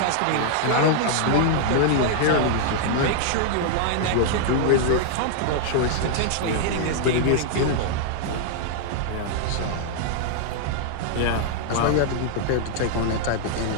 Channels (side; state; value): both; different; correlation -0.01